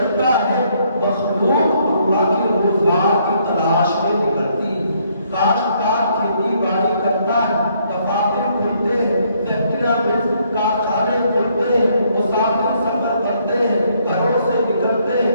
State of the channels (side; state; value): both; inverted; correlation -0.69